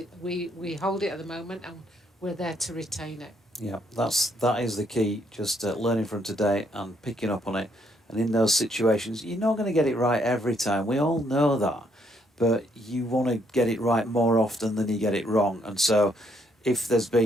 We hold it at the moment, and we're there to retain it. Yeah, that is the key, just learning from today and picking up on it. And in those situations, you're not going to get it right every time. We all know that. But you want to get it right more often than you get it wrong. And so if there's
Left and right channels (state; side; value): normal; both; correlation 0.71